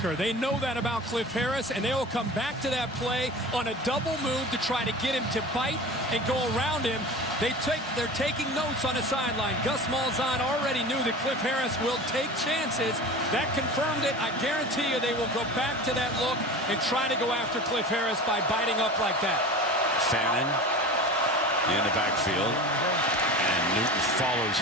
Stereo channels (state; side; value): normal; both; correlation 0.34